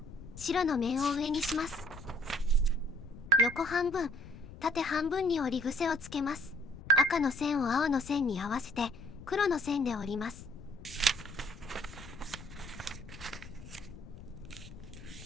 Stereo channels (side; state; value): left; noise; rumble, 15 dB below the sound